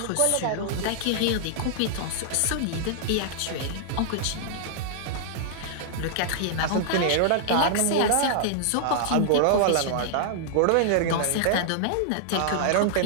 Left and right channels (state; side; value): different; both; correlation -0.01